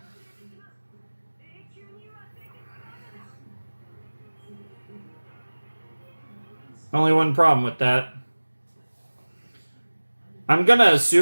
Only one problem with that. I'm gonna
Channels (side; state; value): both; inverted; correlation -1.00